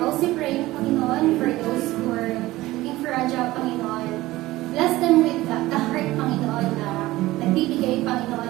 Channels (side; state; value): left; quieter; 17.8 dB